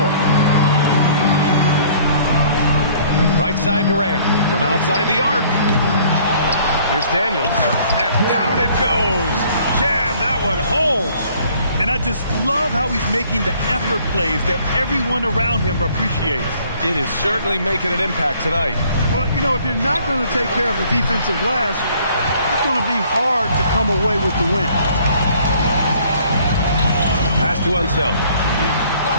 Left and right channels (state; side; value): inverted; both; correlation -0.57